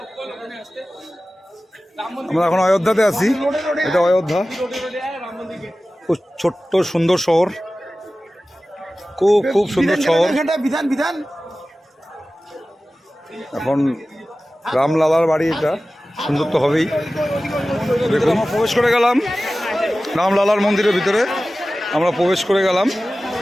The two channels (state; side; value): normal; both; correlation 0.96